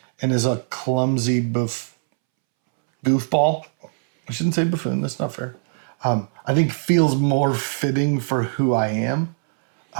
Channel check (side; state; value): left; silent; 65 dB below the other